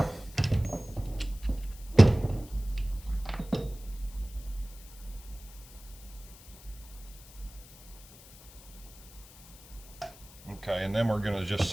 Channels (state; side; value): noise; left; hiss, 20 dB below the sound